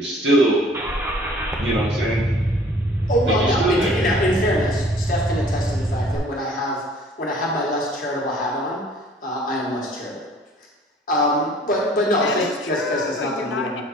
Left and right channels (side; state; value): both; normal; correlation 0.53